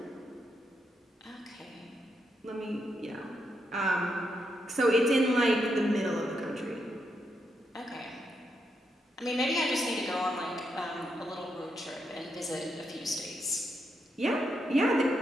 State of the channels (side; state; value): both; normal; correlation 0.81